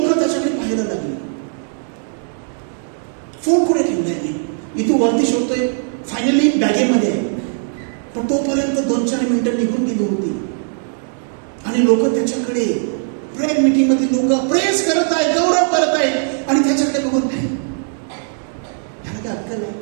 त्याच्याकडे पाहायला लागली. फोन कुठे ठेवलाय मी, इथून वरती शोधतोय. फायनली बॅगेमध्ये आहे. पण तोपर्यंत 2-4 मिनिटं निघून गेली होती आणि लोक त्याच्याकडे, प्रेयर मीटिंग मध्ये लोक प्रेस करत आहेत, गौरव करत आहेत आणि त्याच्याकडे बघून नाही, ह्याला काय अक्कल आहे,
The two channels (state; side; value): silent; left; 67 dB below the other